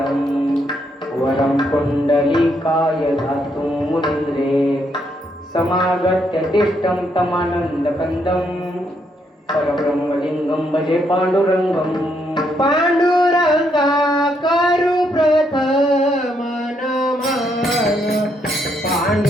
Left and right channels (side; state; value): both; normal; correlation 0.75